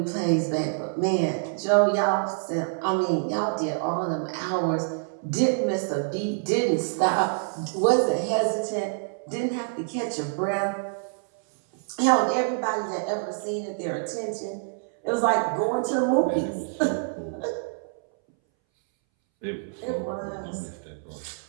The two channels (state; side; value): silent; left; 61 dB below the other